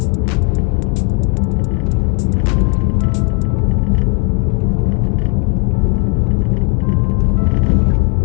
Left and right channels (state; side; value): quieter; right; 32.2 dB